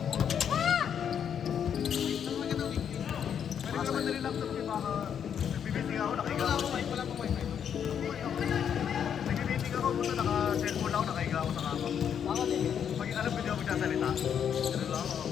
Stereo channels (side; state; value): right; quieter; 8.3 dB